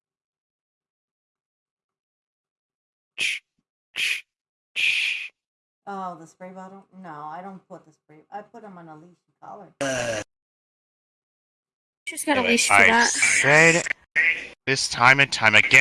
Oh, the spray bottle? No, I don't put the spray. I put them on a leash and collar. She's got a Anyway, leash for I that. said this time and time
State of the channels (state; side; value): identical; both; correlation 1.00